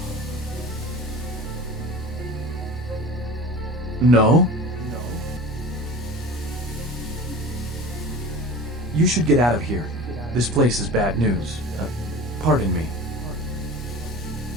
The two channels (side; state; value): both; normal; correlation 0.37